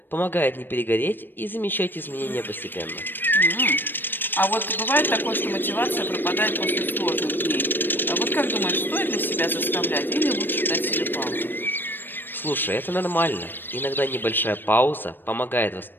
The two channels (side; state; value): right; late; 0.095 ms